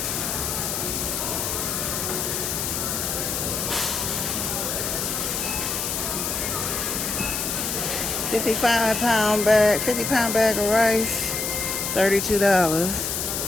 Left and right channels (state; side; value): noise; left; hiss, 2 dB below the sound